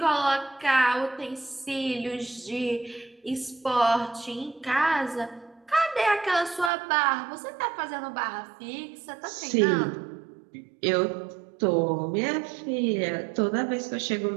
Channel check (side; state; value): left; drops out; at 6.7 s